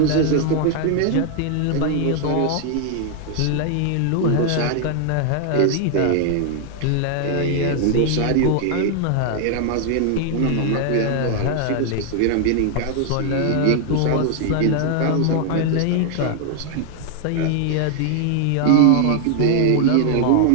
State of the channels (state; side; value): different; both; correlation 0.00